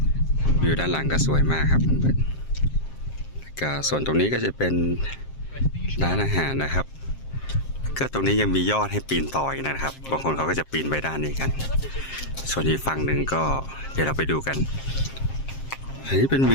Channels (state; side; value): late; right; 7.5 ms